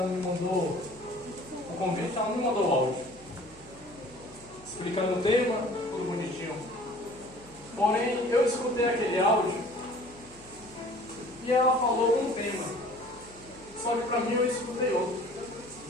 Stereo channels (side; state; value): right; noise; hum, 23 dB below the sound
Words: me mandou o convite, ela me mandou o áudio, explicando o tema, tudo bonitinho. Porém, eu escutei aquele áudio e ela falou um tema, só que para mim eu escutei outro.